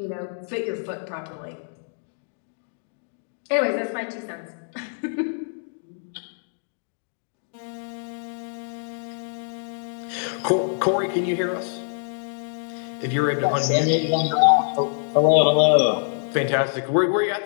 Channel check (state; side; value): silent; right; digital silence